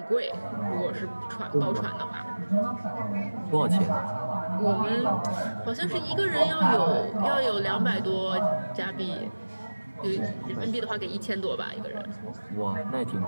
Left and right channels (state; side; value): inverted; both; correlation -1.00